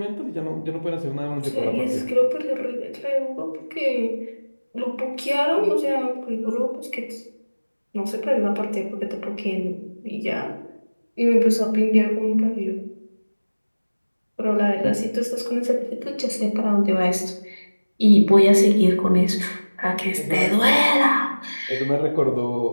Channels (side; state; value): both; inverted; correlation -1.00